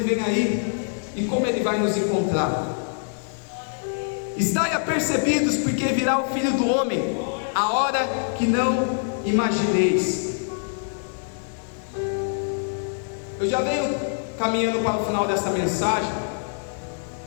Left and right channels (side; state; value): right; silent; 62 dB below the other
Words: vem aí, e como ele vai nos encontrar? Estai apercebidos, porque virá o Filho do Homem a hora que não imagineis. Eu já venho caminhando para o final desta mensagem,